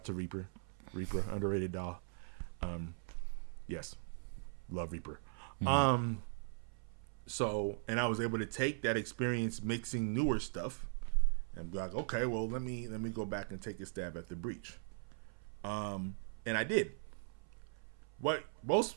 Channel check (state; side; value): silent; left; 51 dB below the other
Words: to Reaper, underrated DAW. Yes, love Reaper. So, and I was able to take that experience mixing newer stuff and be like, okay, well, let me go back and take a stab at the Breach. And I did. What